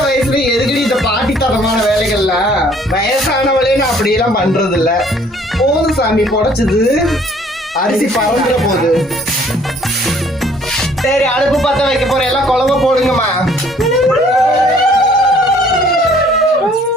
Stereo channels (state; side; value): normal; both; correlation 0.59